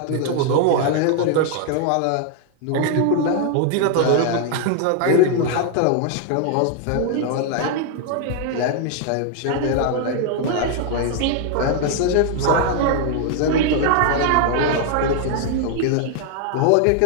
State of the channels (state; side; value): different; both; correlation 0.00